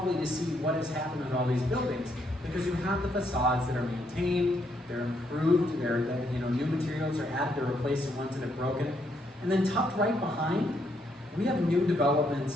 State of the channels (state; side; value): normal; both; correlation 0.74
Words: to see what has happened with all these buildings, because you have the facades that are maintained, they're improved, new materials are added to replace the ones that have broken. And then tucked right behind, we have new